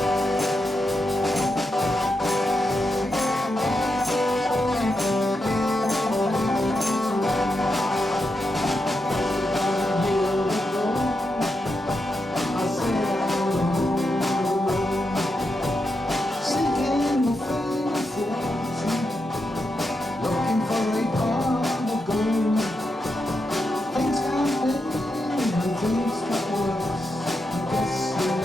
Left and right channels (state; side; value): normal; both; correlation 0.86